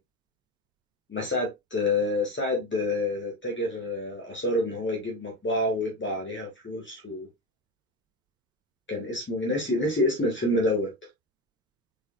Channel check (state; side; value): normal; both; correlation 0.21